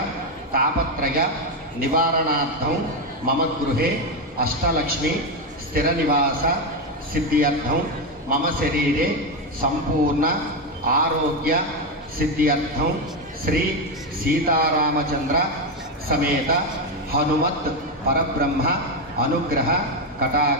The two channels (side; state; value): both; normal; correlation 0.09